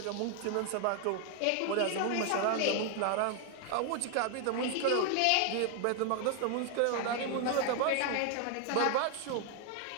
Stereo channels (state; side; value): different; both; correlation 0.01